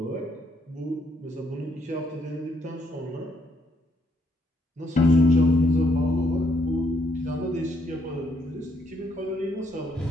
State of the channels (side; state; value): both; normal; correlation 0.73